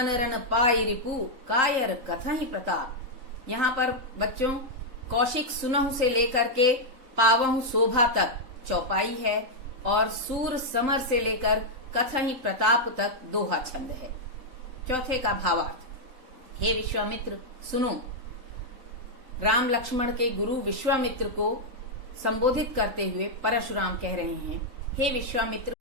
रण पाई रिपु, कायर कथहि प्रताप। यहाँ पर बच्चों कौशिक सुनहु से लेकर के पावहु शोभा तक चौपाई है और सूर समर से लेकर कथहि प्रताप तक दोहा छंद है। चौथे का भावार्थ, हे विश्वामित्र सुनो। राम लक्ष्मण के गुरु विश्वामित्र को संबोधित करते हुए परशुराम कह रहे हैं, हे विश्वामित्र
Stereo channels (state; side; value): late; left; 3.8 ms